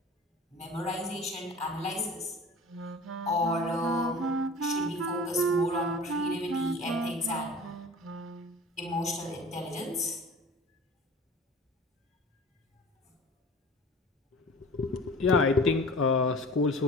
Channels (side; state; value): both; normal; correlation 0.41